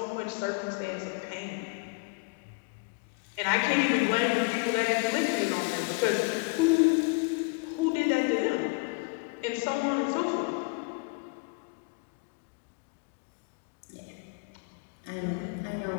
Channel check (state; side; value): quieter; right; 29.6 dB